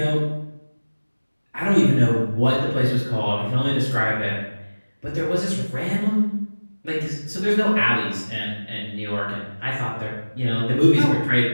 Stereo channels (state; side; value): inverted; both; correlation -1.00